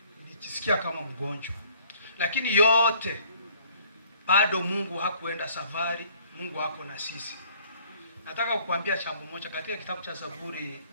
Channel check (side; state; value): both; inverted; correlation -0.58